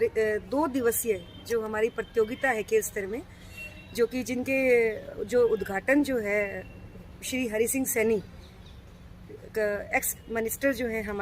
दिवसीय जो हमारी प्रतियोगिता है खेल स्तर में, जो कि जिनके जो उद्घाटन जो है श्री हरि सिंह सैनी एक्स मिनिस्टर जो है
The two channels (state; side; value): identical; both; correlation 1.00